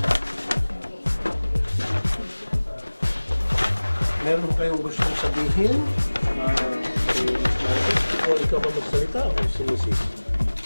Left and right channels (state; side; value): inverted; both; correlation -1.00